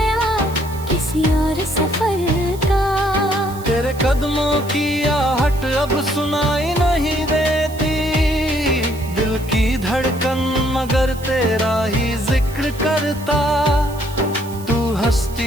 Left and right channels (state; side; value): noise; right; hiss, 18 dB below the sound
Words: किसी और सफर का। तेरे कदमों की आहट अब सुनाई नहीं देती, दिल की धड़कन मगर तेरा ही जिक्र करता। तू